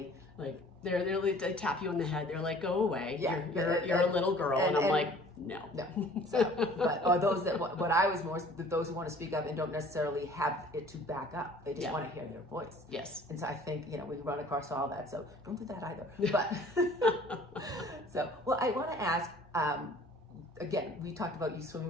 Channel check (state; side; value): normal; both; correlation 0.51